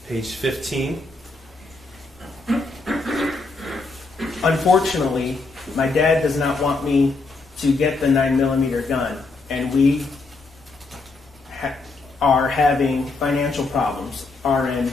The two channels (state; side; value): quieter; right; 3.6 dB